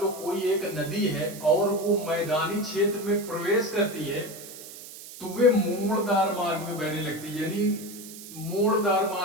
लो कोई एक नदी है और वो मैदानी क्षेत्र में प्रवेश करती है, तो वे मोड़दार मार्ग में बहने लगती है, यानी मोड़दार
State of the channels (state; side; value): noise; right; hiss, 14 dB below the sound